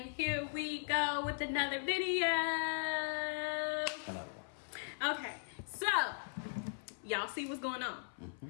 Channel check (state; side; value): silent; right; 52 dB below the other